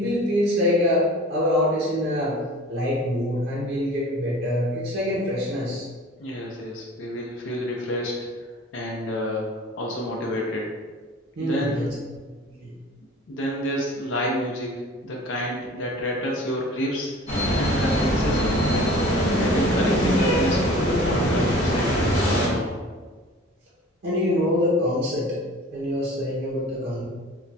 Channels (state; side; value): normal; both; correlation 0.44